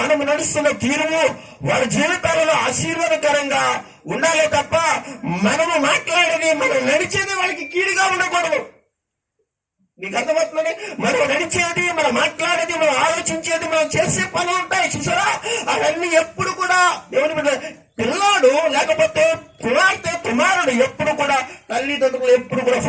మనము నడుస్తున్న తీరుము వారి జీవితాలలో ఆశీర్వాదకరంగా ఉండాలి తప్ప మనము మాట్లాడేది, మనం నడిచేది వాళ్ళకి కీడుగా ఉండకూడదు. మీకు అర్థమవుతుందని? మనం నడిచేది, మనం మాట్లాడేది, మనం ఆలోచించేది, మనం చేసే పనులు ఉంటాయి చూసారా, అవన్నీ ఎప్పుడు కూడా దేవుని పిల్లాడు లేకపోతే కుమారుడు ఎప్పుడు కూడా తల్లిదండ్రులు ఎప్పుడు కూడా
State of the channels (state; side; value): identical; both; correlation 1.00